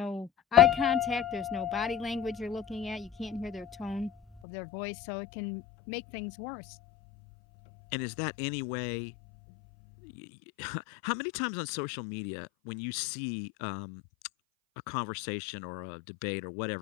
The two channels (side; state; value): right; drops out; at 4.4 s